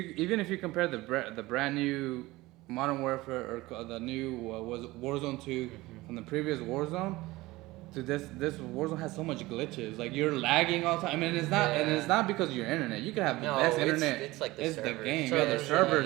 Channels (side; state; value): left; quieter; 19.7 dB